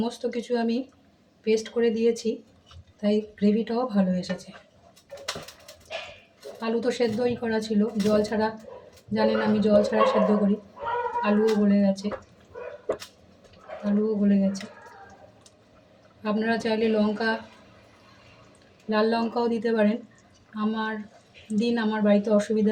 কিছু আমি পেস্ট করে দিয়েছি, তাই গ্রেভিটাও ভালো এসেছে। আলু তো সেদ্ধই করা ছিল, জল ছাড়া, জানেন আমি জল ছাড়া সেদ্ধ করি। আলুও গলে গেছে, আপনারা চাইলে লাল লঙ্কাও দিতে পারেন। আমার বাড়িতে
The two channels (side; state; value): both; identical; correlation 1.00